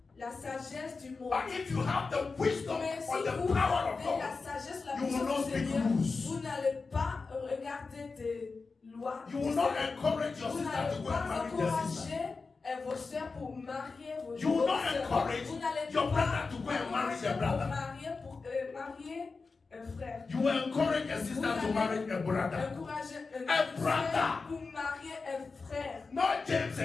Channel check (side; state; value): right; quieter; 4.3 dB